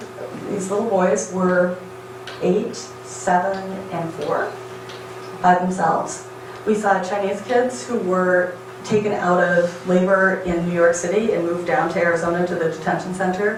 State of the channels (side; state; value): both; identical; correlation 1.00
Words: little boys were 8, 7, and 4 by themselves. We saw Chinese kids who were taken out of labor in New York City and moved down to Arizona to the detention